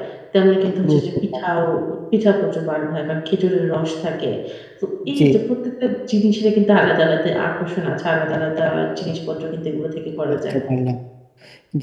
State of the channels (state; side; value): identical; both; correlation 1.00